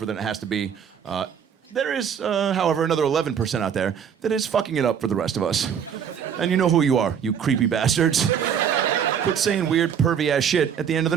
than it has to be. There is, however, another 11% out there that is fucking it up for the rest of us. And you know who you are, you creepy bastards. Quit saying weird, pervy-ass shit at the end of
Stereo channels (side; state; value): left; quieter; 7.9 dB